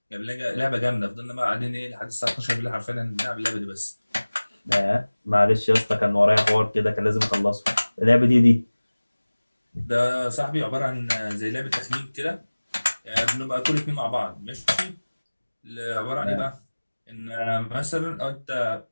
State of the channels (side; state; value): both; inverted; correlation -1.00